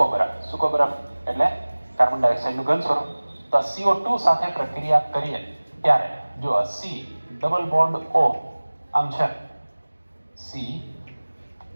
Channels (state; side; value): inverted; both; correlation -1.00